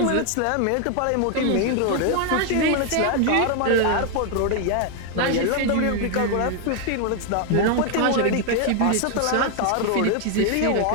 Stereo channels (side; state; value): both; different; correlation 0.00